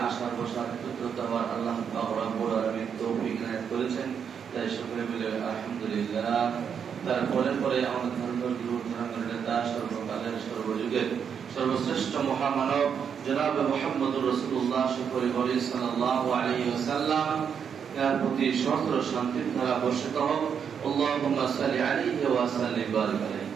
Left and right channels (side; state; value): left; quieter; 7.3 dB